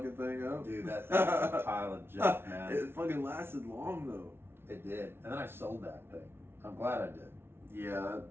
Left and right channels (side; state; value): left; late; 0.11 ms